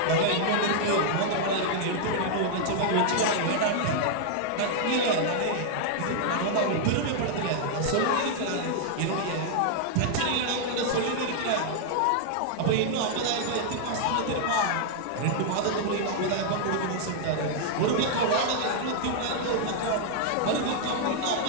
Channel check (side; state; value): both; different; correlation -0.01